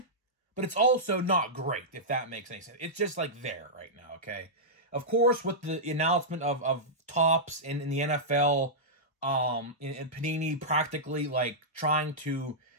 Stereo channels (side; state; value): both; normal; correlation -0.12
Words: but it's also not great, if that makes any sense. It's just, like, there right now, okay? Of course, with the announcement of Topps in the NFL, and Panini practically, like, trying to